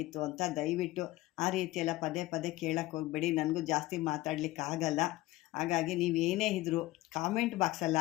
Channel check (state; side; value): quieter; right; 17.9 dB